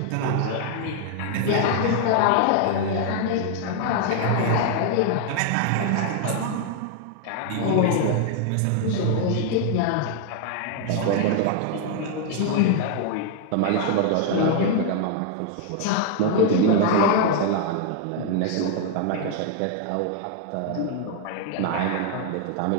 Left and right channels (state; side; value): different; both; correlation 0.00